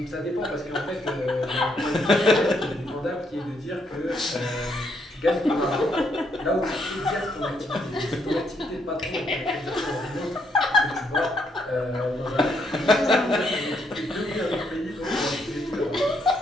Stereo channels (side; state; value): both; normal; correlation 0.74